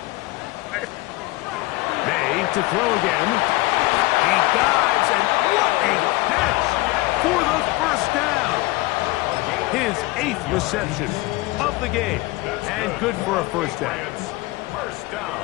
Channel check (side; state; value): right; quieter; 20.8 dB